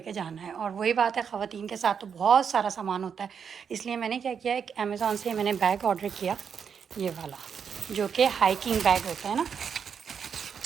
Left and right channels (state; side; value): quieter; left; 7.0 dB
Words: जाना है। और वही बात है, ख़वातीन के साथ तो बहुत सारा सामान होता है, इसलिए मैंने क्या किया, एक अमेज़ॉन से मैंने बैग ऑर्डर किया, ये वाला, जो कि हाइकिंग बैग होता है ना,